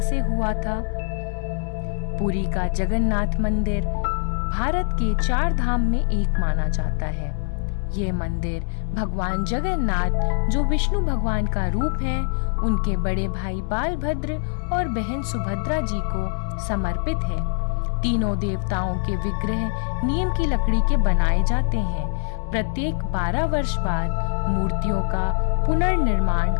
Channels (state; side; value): silent; right; 62 dB below the other